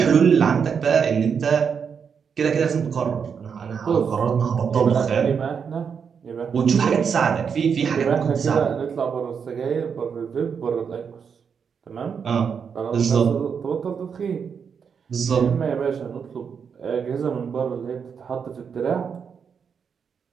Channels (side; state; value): left; quieter; 6.6 dB